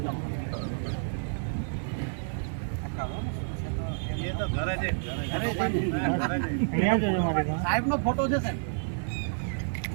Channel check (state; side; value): silent; left; digital silence